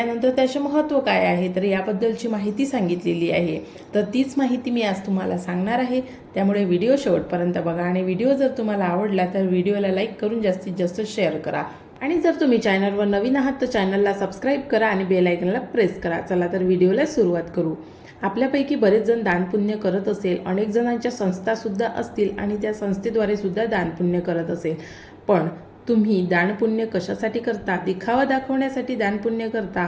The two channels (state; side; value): identical; both; correlation 1.00